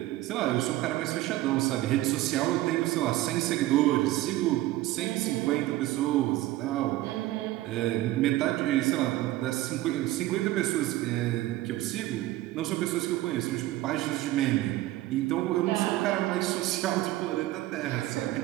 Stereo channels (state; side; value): quieter; left; 16.3 dB